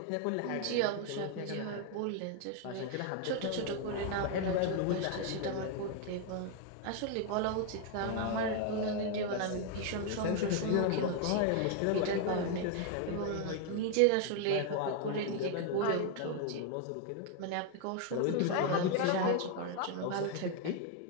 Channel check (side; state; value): both; different; correlation 0.00